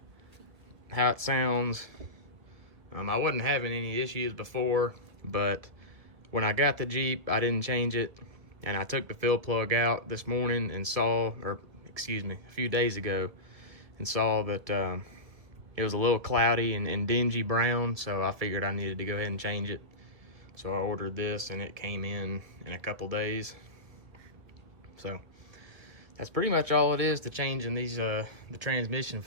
how it sounds. I wasn't having any issues before, but when I got the Jeep, I didn't change it, and I took the fill plug out this morning and saw, or excuse me, a few days ago, and saw that it was a little cloudy and dingy brown, so I figured I needed to go ahead and change it. So I ordered this, and it came in a couple days. So that's pretty much all it is to changing these the transmission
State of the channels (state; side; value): late; left; 2.1 ms